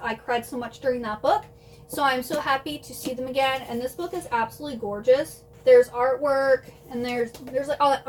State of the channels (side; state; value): both; identical; correlation 1.00